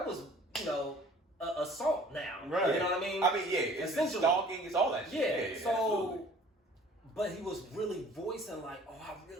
was assault now. Right. You know what I mean? I mean, it's stalking, it's all that shit. Yeah, so, absolutely. But he was really voicing like, oh, I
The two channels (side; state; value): both; normal; correlation 0.51